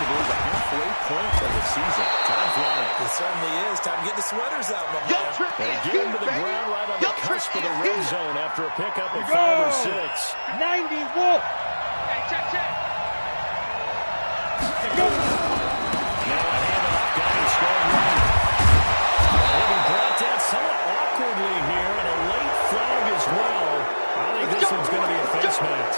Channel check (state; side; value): inverted; both; correlation -1.00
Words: believe, the halfway point of the season. Time flying. It certainly is. Time to get the sweaters out, my man. They get him to the ground right on the cusp of the red zone after a pickup of 5 or 6. 90 Wolf. Hey, check. Go. Now a handoff. Got him strong right. He'll be brought down somewhat awkwardly here, and a late flag as well. I think this one's going to be a face